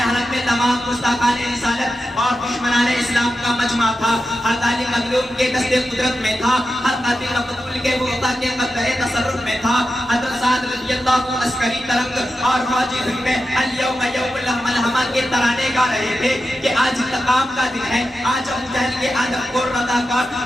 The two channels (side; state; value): both; normal; correlation 0.90